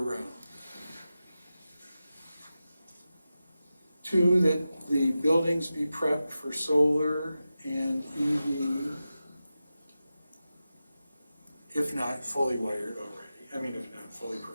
2, that the buildings be prepped for solar and EV, if not fully wired already. If not fully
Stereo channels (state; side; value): inverted; both; correlation -0.93